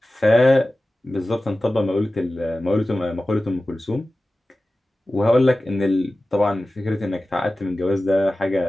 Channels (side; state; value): both; normal; correlation 0.95